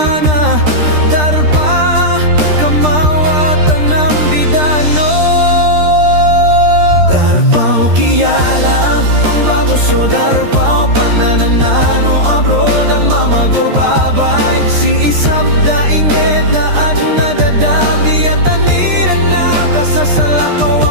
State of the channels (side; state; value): left; late; 13 ms